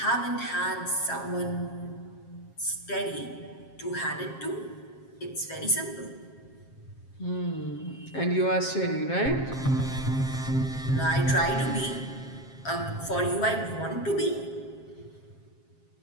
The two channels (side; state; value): right; late; 7.5 ms